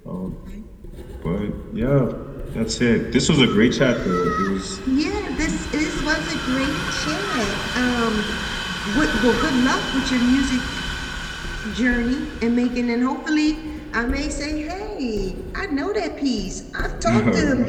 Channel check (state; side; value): identical; both; correlation 1.00